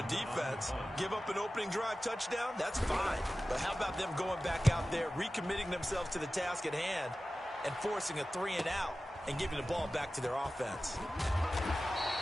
defense. Give up an opening drive touchdown, that's fine. But how about them going back out there, recommitting themselves to the task at hand, and forcing a 3 and out, and giving the ball back to their offense.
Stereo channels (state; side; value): normal; both; correlation 0.95